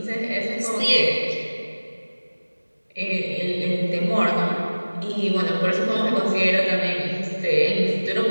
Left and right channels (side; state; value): both; inverted; correlation -1.00